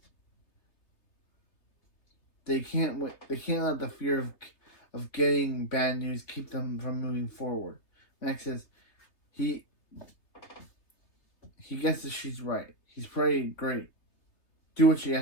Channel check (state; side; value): late; right; 3.3 ms